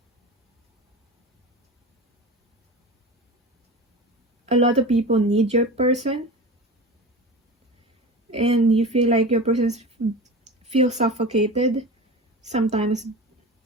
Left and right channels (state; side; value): normal; both; correlation 0.32